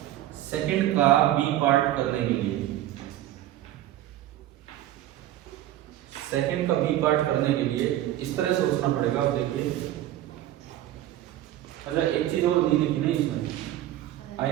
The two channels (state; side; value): quieter; left; 13.6 dB